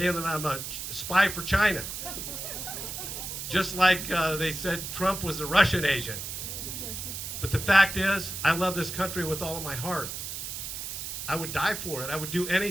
that I'm a spy for China. Just like they said Trump was a Russian agent. But the fact is, I love this country with all of my heart. I would die for it. I would do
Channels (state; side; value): noise; right; hiss, 6 dB below the sound